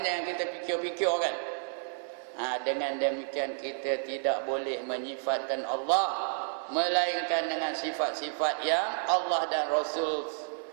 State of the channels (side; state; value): left; silent; digital silence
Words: jangan kita fikir-fikir kan. Dengan demikian kita tidak boleh menyifatkan Allah melainkan dengan sifat-sifat yang Allah dan